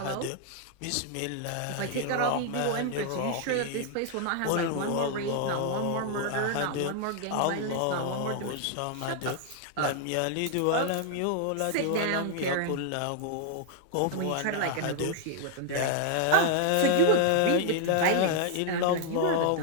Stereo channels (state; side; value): different; both; correlation -0.01